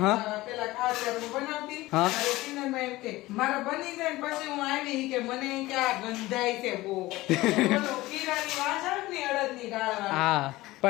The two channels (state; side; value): quieter; right; 18.6 dB